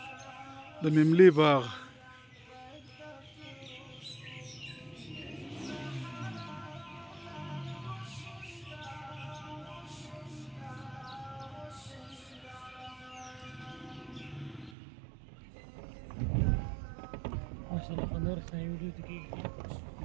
د مملې باغ ماشاءالله خنور سنه ویډیو ته کې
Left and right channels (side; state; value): left; drops out; at 14.7 s